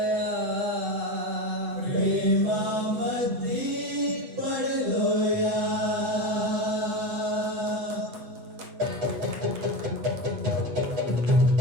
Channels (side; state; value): left; late; 8.0 ms